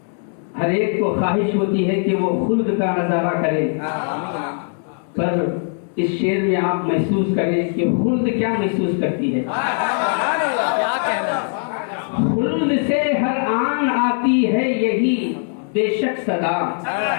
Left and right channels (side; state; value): right; silent; 60 dB below the other